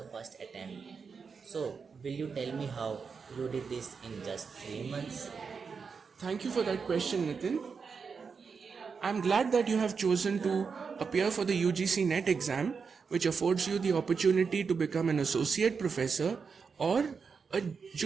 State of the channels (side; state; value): left; quieter; 5.5 dB